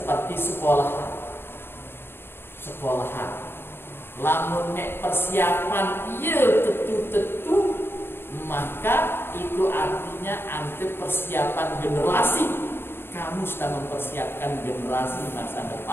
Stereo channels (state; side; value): late; right; 0.11 ms